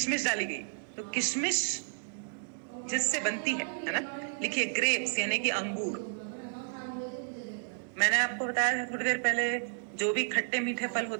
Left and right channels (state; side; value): silent; left; digital silence